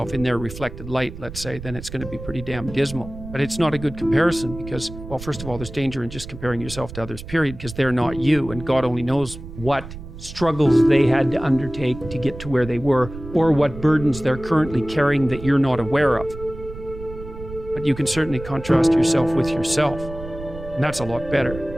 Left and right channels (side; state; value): right; noise; rumble, 12 dB below the sound